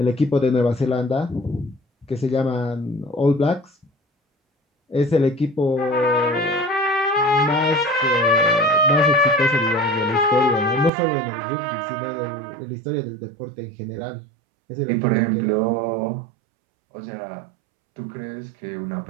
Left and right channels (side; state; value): left; drops out; at 10.9 s